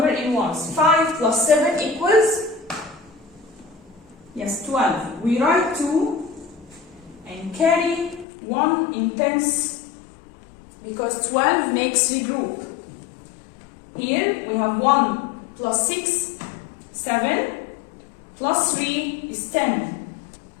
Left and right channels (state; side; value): drops out; right; at 8.2 s